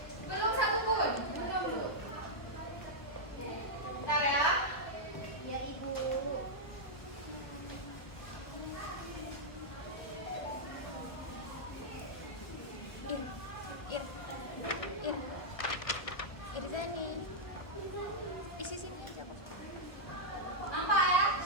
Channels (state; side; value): late; right; 1.5 ms